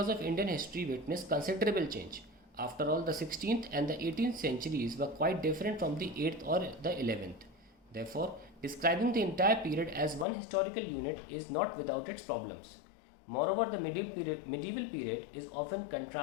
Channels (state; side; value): drops out; right; at 10.2 s